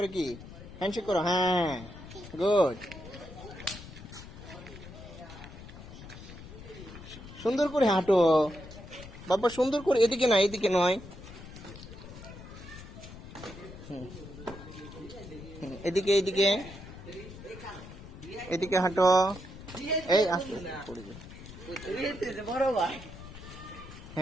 কি হ্যান্ডশেক করো, হ্যাঁ গুড, সুন্দর করে হাঁটো বাবা, সুন্দর করে, এদিকে নয়, এদিকে নয়, এদিকে এদিকে এদিকে হাঁটো, এই আস্তে পড়ে যাবে,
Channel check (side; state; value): left; noise; rumble, 14 dB below the sound